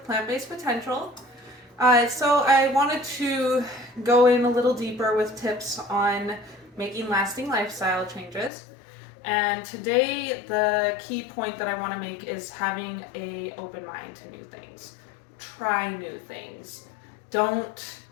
Plant-Based Potential. So I wanted to go in a little deeper with tips on making lasting lifestyle changes. And today the key point that I want to make is having a open mind to new things. Try new things. Don't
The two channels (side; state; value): right; drops out; at 8.5 s